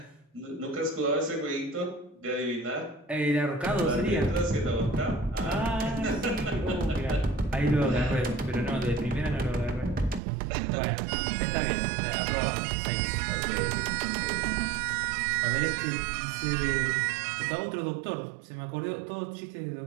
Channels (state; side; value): drops out; left; at 10.2 s